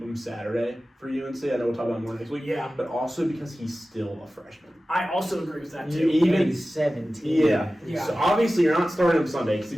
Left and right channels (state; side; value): normal; both; correlation 0.95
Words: Saturday for UNC. I know we'll talk about more next week. Yeah. But also because he's still a freshman. I also agree with that, too. He's 17. Yeah. So obviously you're not starting him Sunday. Because